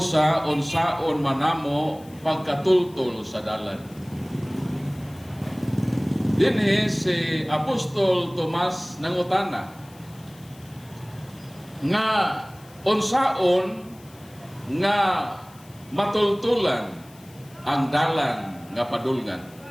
unsaon manamo pagkatultol sa dalan. Dinhi si Apostol Tomas nangutana nga unsaon nga matultulan ang dalan nga padulngan.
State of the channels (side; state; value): left; noise; hiss, 25 dB below the sound